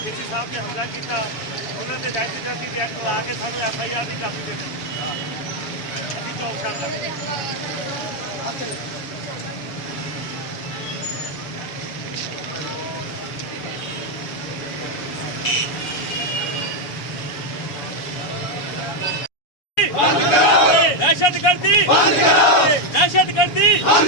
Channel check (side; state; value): right; late; 6.9 ms